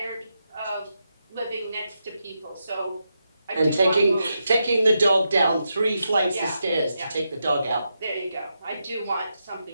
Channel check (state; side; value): inverted; both; correlation -0.85